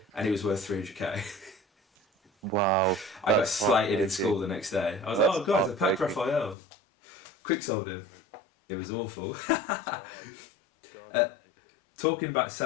And he was worth 300k. Wow. I got slated in school the next day. I was like, oh guys, I packed Raphael. Quick sold him. It was awful. God. Talking about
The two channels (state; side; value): drops out; right; at 6.6 s